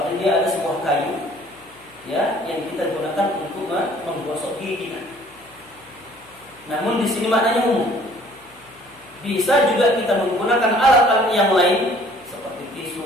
ini ada sebuah kayu, yang kita gunakan untuk menggosok gigi kita. Namun di sini maknanya umum. Bisa juga kita menggunakan alat-alat yang lain seperti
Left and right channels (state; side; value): noise; left; hum, 30 dB below the sound